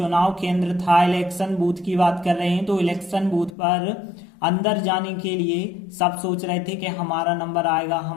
केंद्र था, इलेक्शन बूथ की बात कर रहे हैं, तो इलेक्शन बूथ पर अंदर जाने के लिए सब सोच रहे थे कि हमारा नंबर आएगा,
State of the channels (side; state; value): right; drops out; at 3.5 s